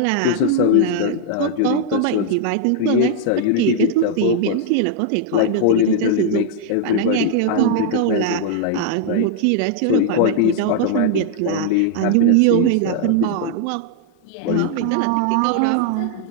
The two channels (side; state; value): both; different; correlation 0.00